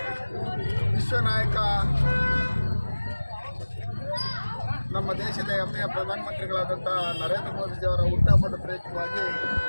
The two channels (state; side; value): inverted; both; correlation -1.00